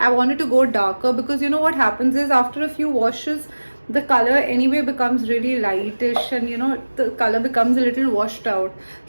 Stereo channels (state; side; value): inverted; both; correlation -1.00